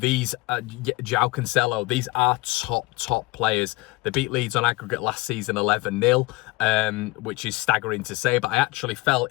João Cancelo, these are top players. They beat Leeds on aggregate last season 11-0, which is staggering to say, but I actually felt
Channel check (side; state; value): right; quieter; 22.1 dB